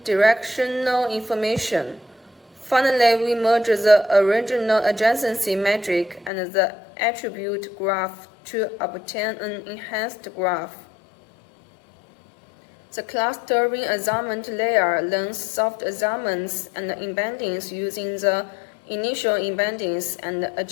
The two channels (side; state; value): right; drops out; at 6.3 s